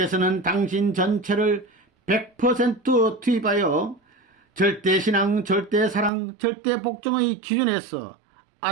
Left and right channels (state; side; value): drops out; left; at 6.1 s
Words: 당신 전체를 100% 투입하여 절대신앙, 절대사랑, 절대복종의 기준에서